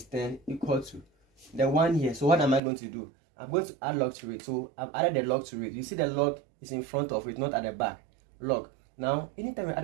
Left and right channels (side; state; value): left; drops out; at 2.6 s